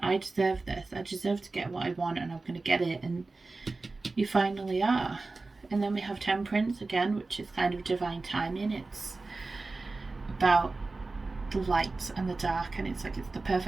I deserve this, I deserve to get what I want, and I'm going to get it, and you finally are. And then we have Temperance again, which is kind of divine timing. It's about the light and the dark, and it's like it's the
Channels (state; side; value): quieter; left; 3.5 dB